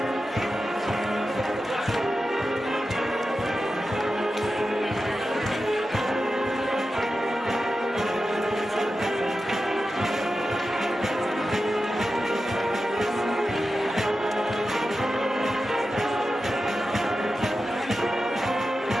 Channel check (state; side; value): normal; both; correlation 0.92